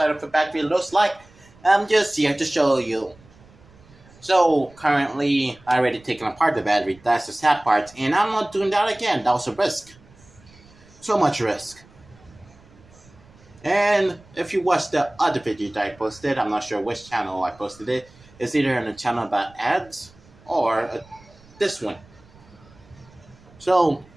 of a battery looks like, I'm just here to show you. So, currently, I already taken apart the battery. That's the sad part, and I'm not doing that again. That was a risk. So much risk. And if you watch the other video that I posted, I'm not sure which channel I posted it. It's either on a channel about ads or this one. So,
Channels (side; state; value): right; noise; rumble, 26 dB below the sound